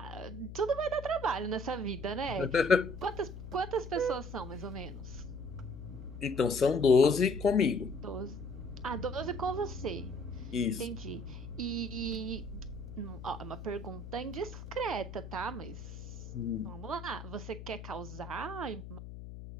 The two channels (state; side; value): noise; left; hum, 11 dB below the sound